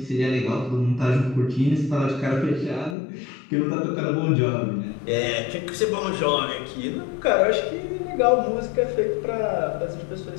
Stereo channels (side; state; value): right; drops out; at 3.0 s